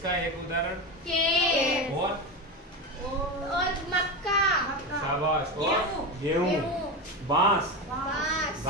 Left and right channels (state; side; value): normal; both; correlation 0.19